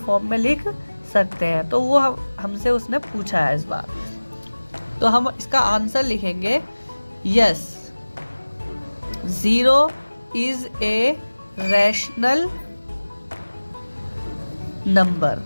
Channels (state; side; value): inverted; both; correlation -1.00